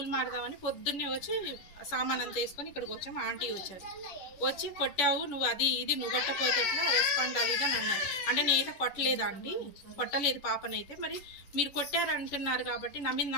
మారదామని పొద్దున్నే వచ్చి సామాన్ అంతా వేసుకొని ఇక్కడికి వచ్చాము. ఆంటీ వచ్చారు, వచ్చి కొట్టావు నువ్వు, అది ఇది నువ్వు కొట్టపోతే ఎట్లా రెస్పాండ్ అది అని అన్నారు. అంటే నేనైతే కొట్టలేదా అండి, కొట్టలేదు పాపనైతే. మరి మీరు కొట్టారంటున్నారు కాబట్టి నా మీద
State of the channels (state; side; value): late; right; 11 ms